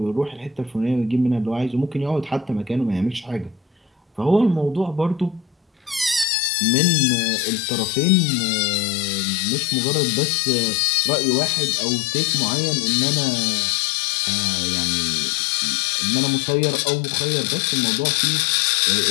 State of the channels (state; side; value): drops out; right; at 6.2 s